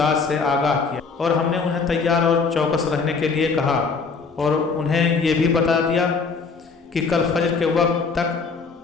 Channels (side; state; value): right; quieter; 4.8 dB